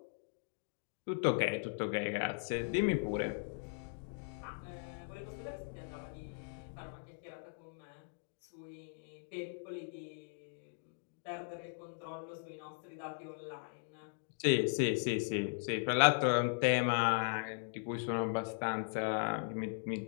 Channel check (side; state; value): right; silent; digital silence